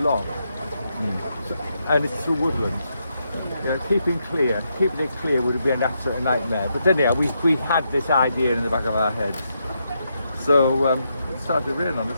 so, and it's through woodland. Keeping it clear would have been an absolute nightmare. But anyhow, we had this idea in the back of our heads. So it started to rain on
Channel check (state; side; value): inverted; both; correlation -0.81